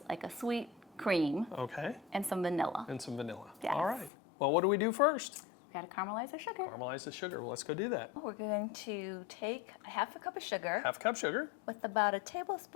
like a sweet cream. Okay. And some vanilla. And some vanilla. Yes. All right. Well, what do we do first? We got to caramelize our sugar. Caramelize the sugar. Well, let's go do that. We're going to take a half a cup of sugar Half a cup sugar. with about a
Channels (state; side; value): drops out; right; at 4.1 s